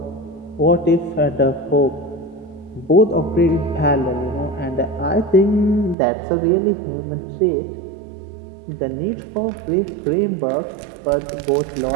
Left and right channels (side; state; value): left; drops out; at 6.0 s